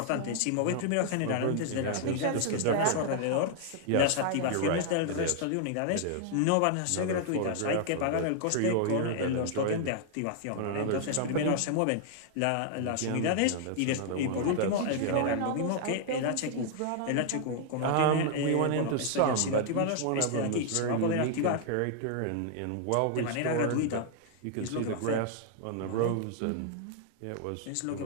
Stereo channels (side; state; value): both; different; correlation -0.01